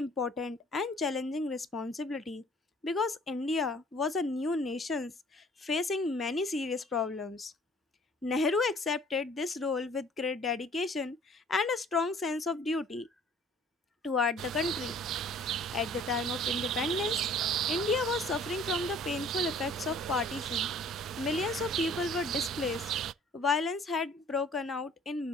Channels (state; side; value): normal; both; correlation 0.53